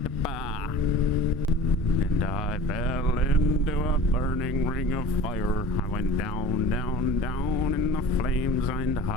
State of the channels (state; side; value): normal; both; correlation 0.40